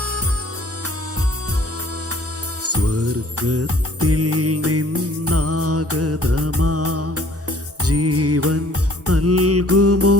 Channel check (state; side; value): normal; both; correlation 0.56